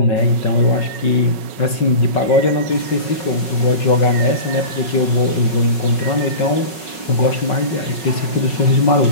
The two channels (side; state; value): right; late; 5.4 ms